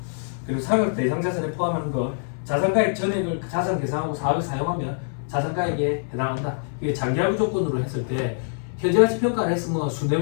그리고 사각 대상자산에 포함하는 거 자산가액 전액을 자산 계상하고 사업에 사용하면 자산가액에 해당한다. 이게 장기하부 조건으로 했을 때 현재가치 평가를 했으면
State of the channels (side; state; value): right; silent; 62 dB below the other